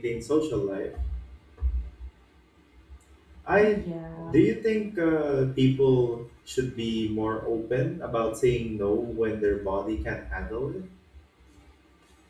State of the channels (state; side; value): identical; both; correlation 1.00